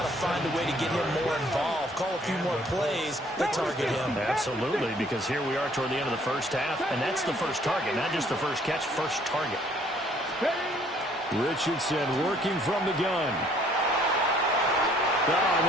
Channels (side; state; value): both; normal; correlation 0.61